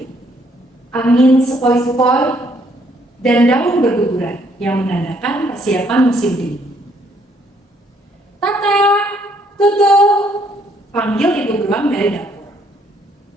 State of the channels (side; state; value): both; normal; correlation 0.68